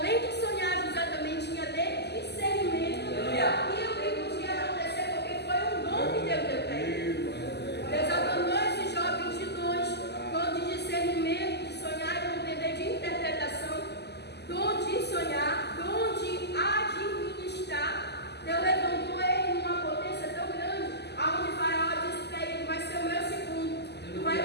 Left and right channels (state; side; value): late; right; 0.49 ms